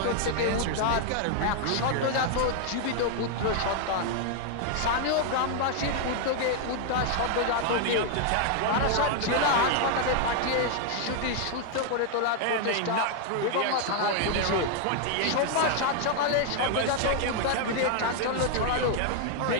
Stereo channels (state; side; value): different; both; correlation 0.00